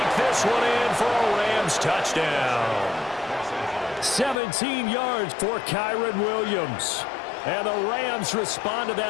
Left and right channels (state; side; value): drops out; right; at 4.4 s